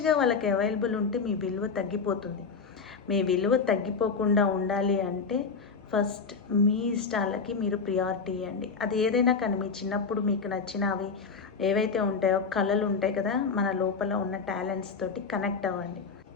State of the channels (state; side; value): quieter; right; 5.1 dB